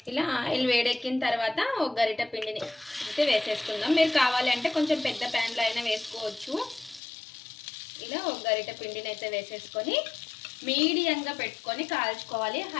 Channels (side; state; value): right; drops out; at 7.0 s